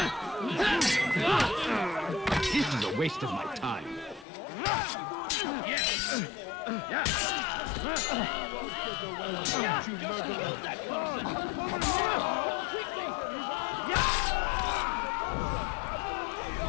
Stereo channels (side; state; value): right; drops out; at 4.2 s